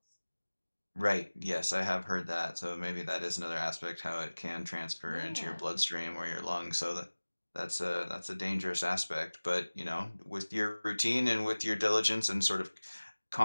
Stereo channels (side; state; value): both; inverted; correlation -1.00